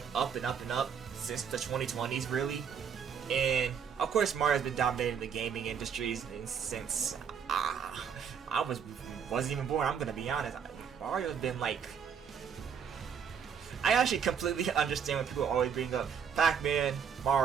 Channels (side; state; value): left; quieter; 7.3 dB